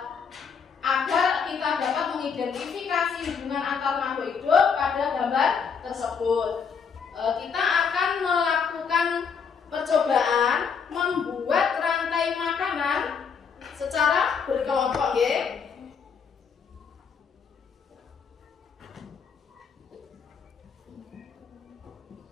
agar kita dapat mengidentifikasi hubungan antar makhluk hidup pada gambar tersebut. Kita akan melakukan percobaan membuat rantai makanan secara berkelompok, ya.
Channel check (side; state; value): right; quieter; 6.2 dB